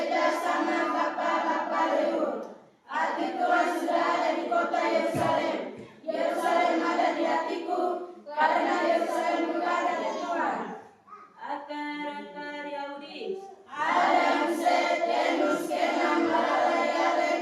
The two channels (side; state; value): both; identical; correlation 1.00